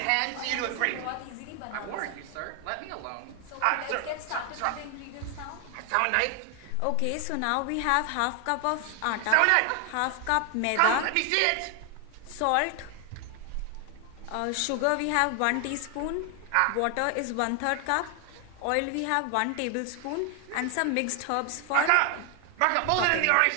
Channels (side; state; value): both; different; correlation 0.00